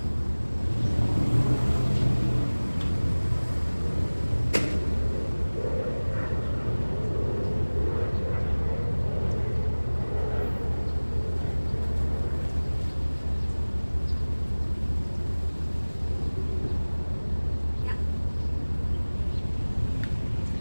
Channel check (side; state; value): both; inverted; correlation -1.00